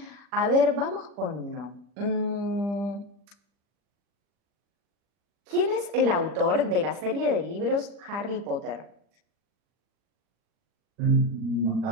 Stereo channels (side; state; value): left; late; 40 ms